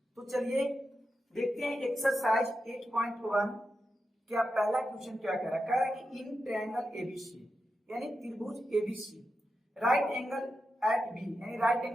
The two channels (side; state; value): both; normal; correlation 0.89